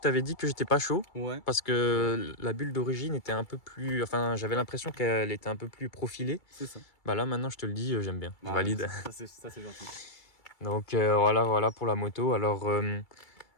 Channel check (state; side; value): late; right; 2.3 ms